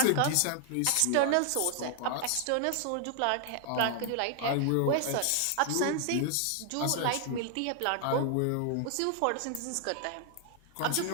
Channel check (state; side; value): different; both; correlation 0.00